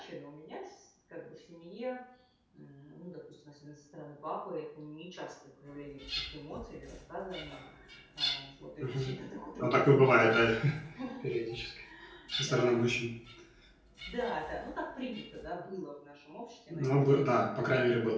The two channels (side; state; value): both; identical; correlation 1.00